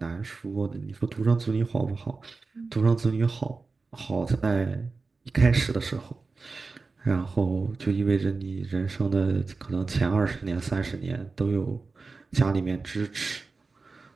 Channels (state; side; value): quieter; left; 4.1 dB